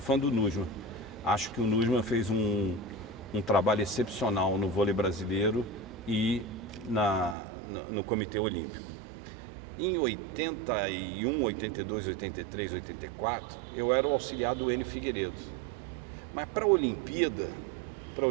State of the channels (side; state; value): left; drops out; at 7.4 s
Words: do Nussmann. Acho que o Nussmann fez um trabalho excepcional no vôlei brasileiro e no Comitê Olímpico. Em 81, 82, 83, 84, eu era o auxiliar do Enio Figueiredo. Mas para a Olimpíada,